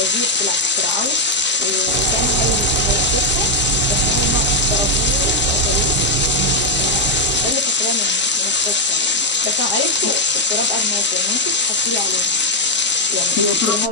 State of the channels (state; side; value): normal; both; correlation 0.01